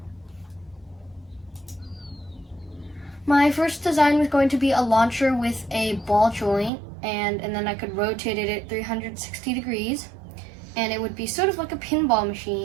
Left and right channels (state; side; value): drops out; left; at 6.7 s